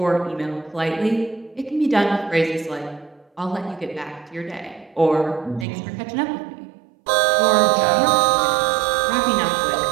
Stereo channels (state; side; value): drops out; left; at 5.7 s